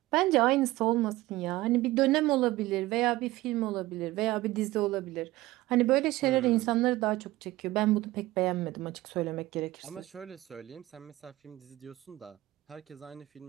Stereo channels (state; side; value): quieter; left; 17.8 dB